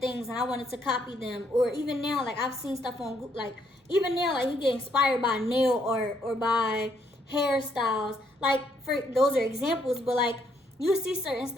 and I wanted to copy them. Or even now, like, I've seen stuff on, like, even now, like, you get inspired by nail art or by hairstyles. Like, for those are examples, but like, you see certain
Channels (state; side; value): normal; both; correlation 0.72